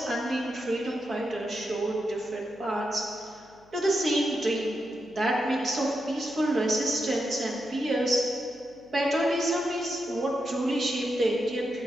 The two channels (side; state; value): left; noise; hum, 29 dB below the sound